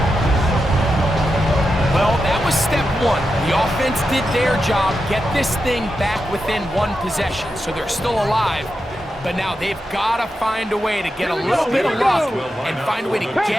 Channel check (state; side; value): normal; both; correlation 0.88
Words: Well, that was step one. The offense did their job, get this thing back within one possession, so they're still alive. But now they've got to find a way to get a little bit of luck and find a way to